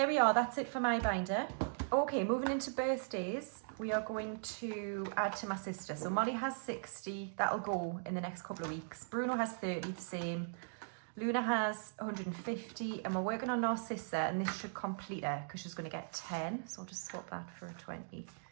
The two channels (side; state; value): left; silent; digital silence